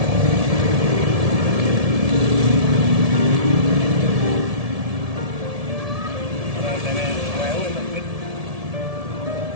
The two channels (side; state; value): left; late; 1.7 ms